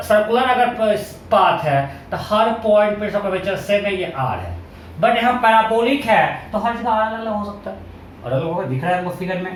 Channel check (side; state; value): both; identical; correlation 1.00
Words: अगर पाथ है तो हर पॉइंट पे कर्वेचर सेम है, ये आर है। बट यहाँ पैराबोलिक है तो हर जगह अलग अलग हो सकता है, अलग अलग होगा, दिख रहा है हमको फिगर